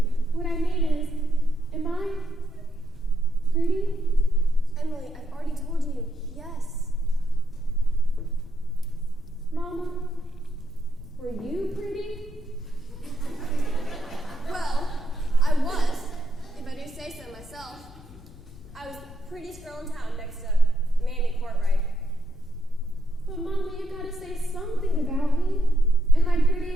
What I mean is, am I pretty? Emily, I've already told you, yes. Mama, were you pretty? Well, I was, if I do say so myself. I was the prettiest girl in town next to Mamie Courtright. But Mama, you gotta say something about me. Am I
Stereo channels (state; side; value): noise; left; rumble, 19 dB below the sound